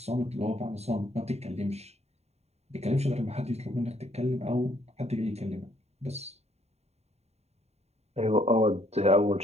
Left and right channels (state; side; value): late; left; 0.31 ms